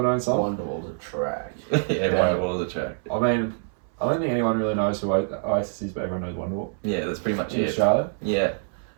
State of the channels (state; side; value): silent; left; 61 dB below the other